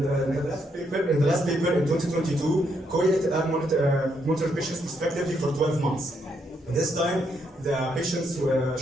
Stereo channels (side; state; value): both; normal; correlation 0.76